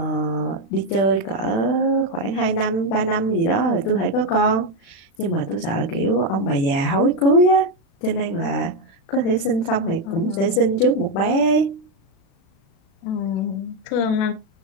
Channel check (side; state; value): right; late; 36 ms